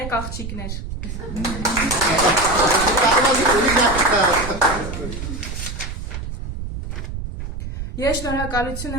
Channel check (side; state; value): right; noise; rumble, 7 dB below the sound